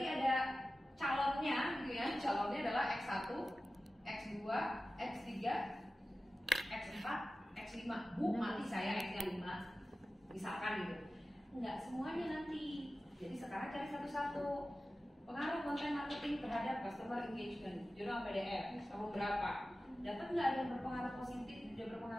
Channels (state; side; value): normal; both; correlation 0.95